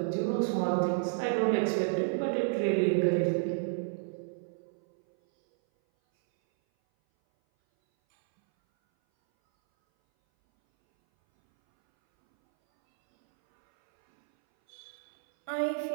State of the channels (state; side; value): silent; left; 58 dB below the other